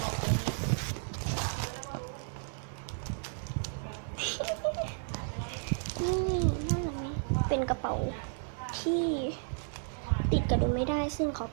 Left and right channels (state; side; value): silent; left; 56 dB below the other